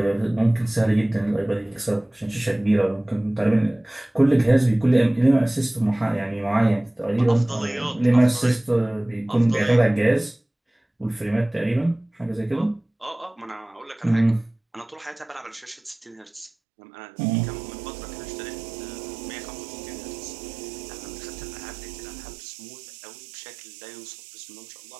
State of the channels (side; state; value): left; drops out; at 16.5 s